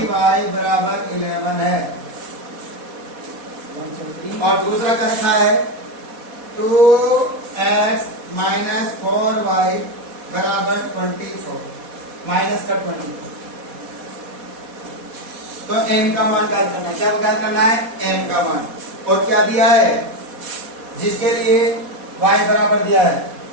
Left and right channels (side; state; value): left; late; 4.1 ms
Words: बराबर 11 है। और दूसरा का रखा है 2x - 4y बराबर 24, माइनस का 24। तो m का मान ज्ञात करना है। क्या ज्ञात करना है? m का मान। और क्या दिया है? जिसके लिए y बराबर दिया है